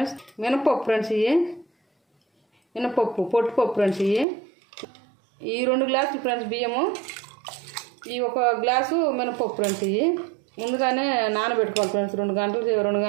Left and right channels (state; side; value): drops out; left; at 4.2 s